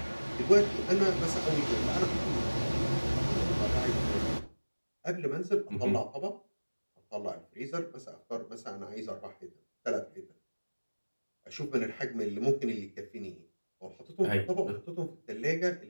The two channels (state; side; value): inverted; both; correlation -1.00